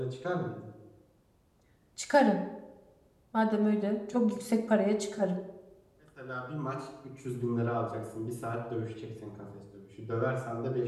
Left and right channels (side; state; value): both; identical; correlation 1.00